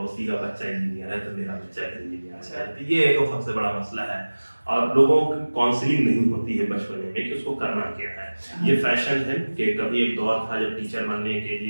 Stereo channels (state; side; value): inverted; both; correlation -1.00